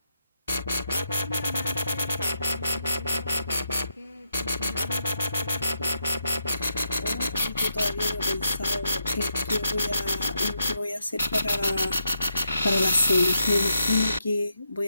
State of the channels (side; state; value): both; inverted; correlation -0.82